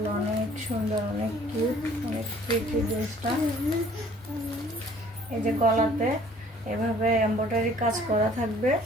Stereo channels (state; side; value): normal; both; correlation 0.55